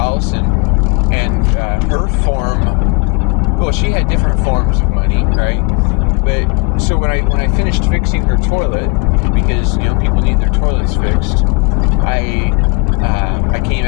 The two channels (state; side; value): quieter; right; 31.0 dB